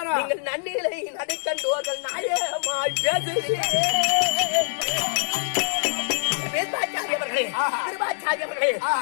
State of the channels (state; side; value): silent; right; 62 dB below the other